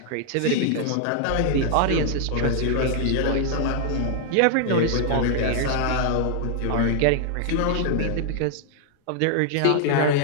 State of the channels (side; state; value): both; different; correlation -0.01